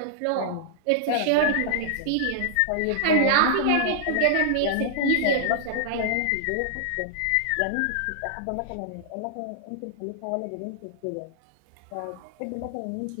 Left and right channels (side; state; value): both; different; correlation -0.01